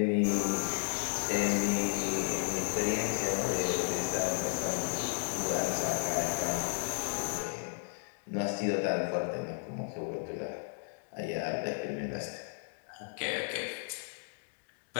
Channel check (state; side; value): silent; right; 55 dB below the other